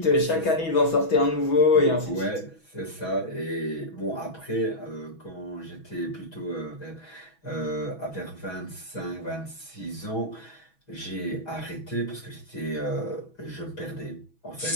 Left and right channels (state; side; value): late; right; 6.1 ms